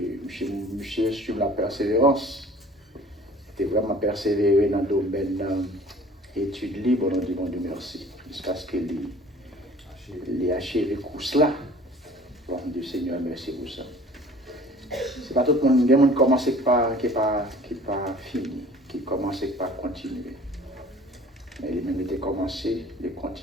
sur la persévérance. C'était vraiment persévéré dans le domaine études libres. On dit bon Dieu merci. Jusqu'à ce qu'il ait achevé le course là. Bon Dieu Seigneur, merci pour ça. C'est pas tout le monde. Il y a des gens qui commencent par qui pas fini, qui commencent par continuer. Mais les mêmes étaient commencés, les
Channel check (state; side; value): normal; both; correlation 0.49